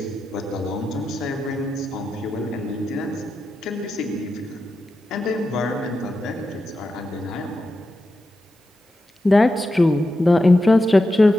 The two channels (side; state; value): both; normal; correlation 0.89